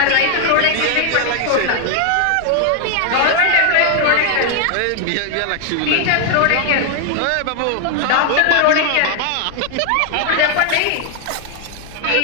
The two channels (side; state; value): both; different; correlation 0.00